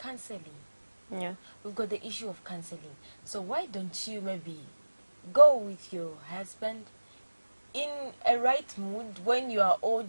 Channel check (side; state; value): both; inverted; correlation -1.00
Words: Yeah. We've got the issue of counseling. So why don't you maybe go with your husband in a right mood, when you are all